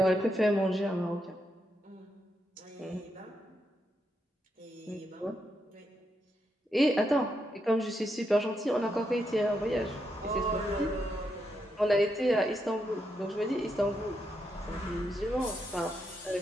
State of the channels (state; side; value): normal; both; correlation 0.82